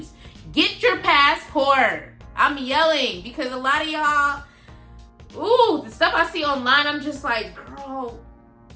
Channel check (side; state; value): both; identical; correlation 1.00